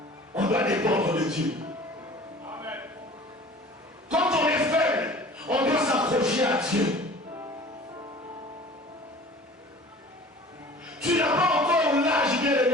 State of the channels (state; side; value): normal; both; correlation 0.45